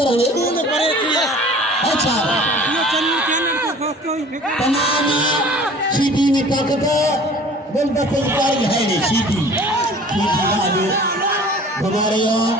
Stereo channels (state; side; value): normal; both; correlation 0.47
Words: ni. अच्छा तमाम सीधी में ताकत बोल बच्चे कारी है नहीं सीधी सीधी घुमा रहे हो